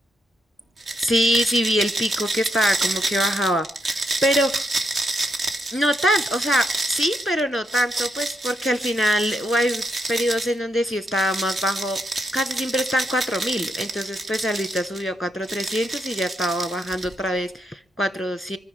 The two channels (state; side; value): normal; both; correlation 0.79